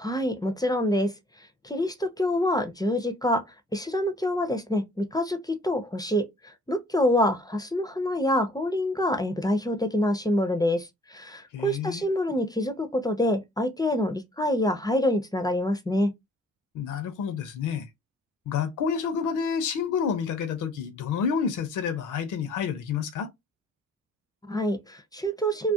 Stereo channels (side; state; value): both; normal; correlation 0.57